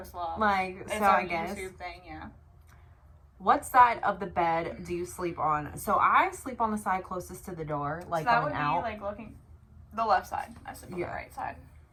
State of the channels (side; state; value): both; identical; correlation 1.00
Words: Love. Like, It's so our I guess. YouTube thing, yeah. What side of the bed do you sleep on? So I sleep on the side closest to the door, like so that going would out. be like looking the left side. I sleep on the right side.